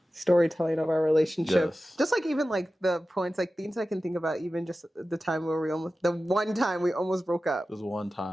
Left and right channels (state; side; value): normal; both; correlation 0.95